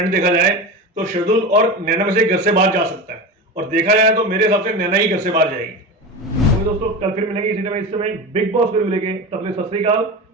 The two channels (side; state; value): both; normal; correlation 0.26